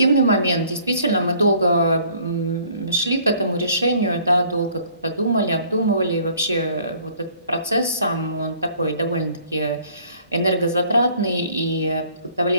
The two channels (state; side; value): inverted; both; correlation -0.58